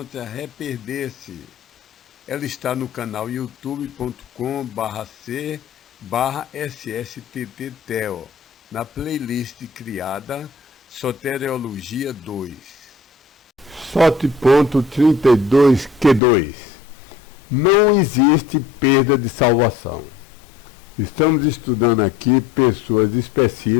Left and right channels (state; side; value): drops out; right; at 16.2 s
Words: Reperder-se. Ela está no canal youtube.com/c/ssttteo, na playlist criada Soteriologia 2. SOT.32Q2. Não existe perda de salvação. Estamos estudando aqui pessoas